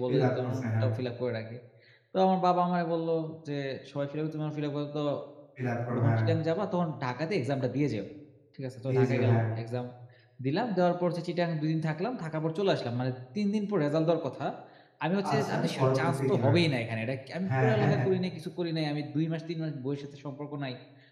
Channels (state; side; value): identical; both; correlation 1.00